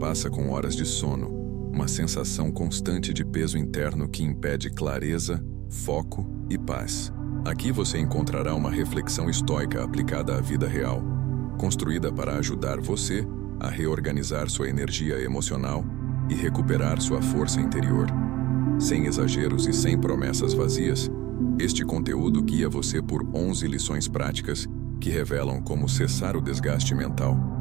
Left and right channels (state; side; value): quieter; left; 17.8 dB